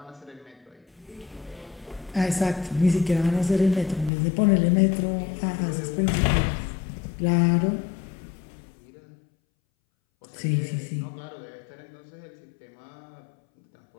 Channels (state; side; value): drops out; right; at 4.1 s